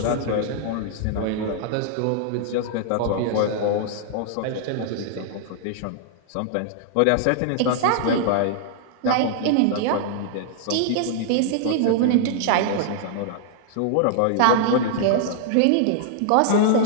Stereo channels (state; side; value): different; both; correlation -0.01